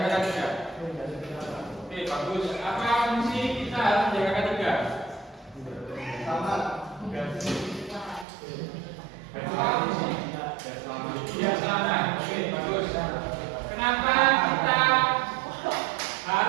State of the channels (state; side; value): drops out; left; at 8.2 s